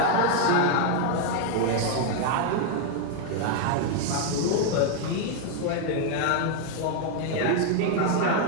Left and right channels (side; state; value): both; different; correlation 0.00